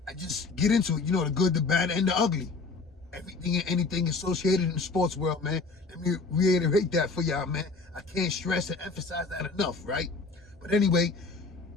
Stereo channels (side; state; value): right; quieter; 4.0 dB